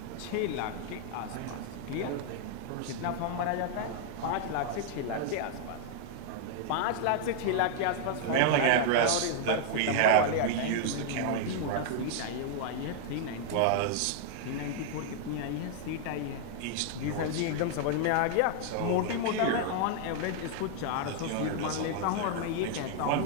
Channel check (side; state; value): both; different; correlation -0.01